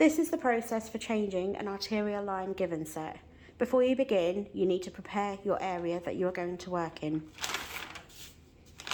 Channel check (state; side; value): identical; both; correlation 1.00